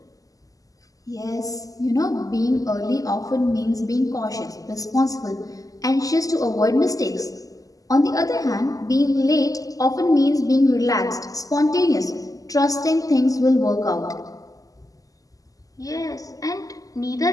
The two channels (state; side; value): late; right; 0.17 ms